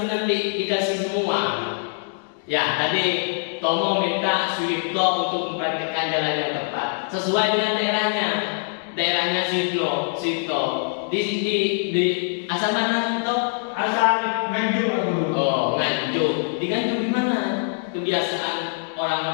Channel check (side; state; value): right; silent; 63 dB below the other